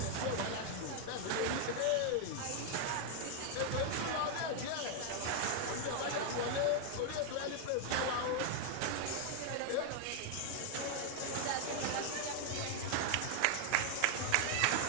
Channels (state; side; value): different; both; correlation 0.00